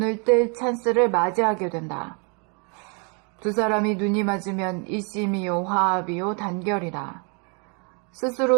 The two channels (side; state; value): left; quieter; 36.2 dB